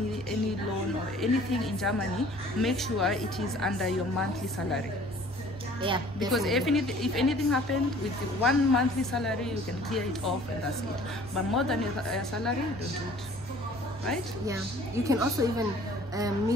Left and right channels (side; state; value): both; normal; correlation 0.51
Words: loan or anything in Germany, make sure it is under your monthly salary. Yeah, because if anything happened with the 1 monthly salary, you can clear it off and that's it. But more than your salary, don't do it. Right? Yeah. You can also even